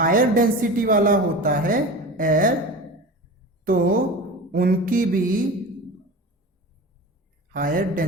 डेंसिटी वाला होता है एयर तो उनकी भी हायर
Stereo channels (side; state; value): both; normal; correlation 0.32